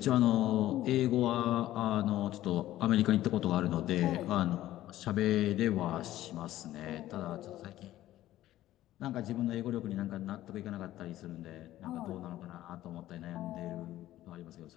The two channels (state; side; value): quieter; right; 14.4 dB